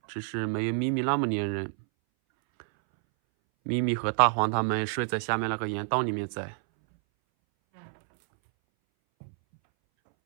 只是没有咪咪那么粘人。咪咪和大黄他们睡在下面那个岩洞里面在。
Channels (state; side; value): silent; left; 59 dB below the other